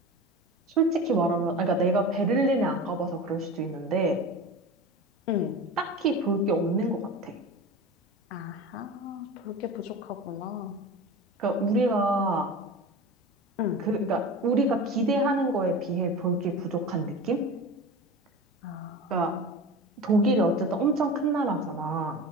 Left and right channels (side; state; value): both; normal; correlation 0.32